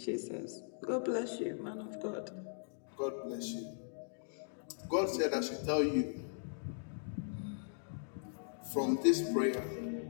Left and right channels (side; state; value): right; silent; digital silence